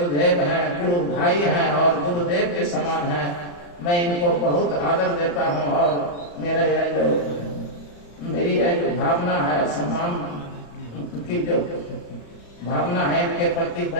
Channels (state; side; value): late; right; 35 ms